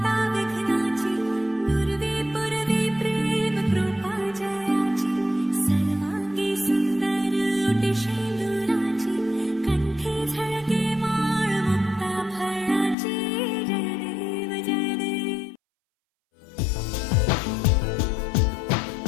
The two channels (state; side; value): drops out; right; at 13.0 s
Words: विघ्नाची पूर्वे पूर्वे प्रेम कृपा जयाची सर्वांगी सुंदर ओटी शेंदुराची कंठी झळके माळ मुक्ता फळाची जय देव जय देव.